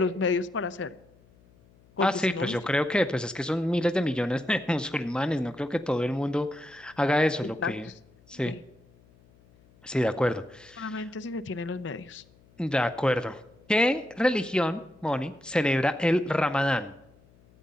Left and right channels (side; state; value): left; noise; hum, 29 dB below the sound